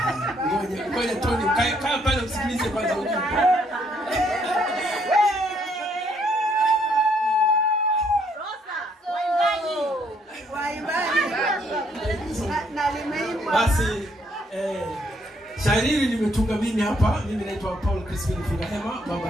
Ngoja Tony, kaa pale usikilize kwanza ujumbe. Basi shairi hili nimetunga mimi hapa. Mimi naitwa Paul Crispin Fungahema, Baba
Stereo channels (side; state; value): both; normal; correlation 0.70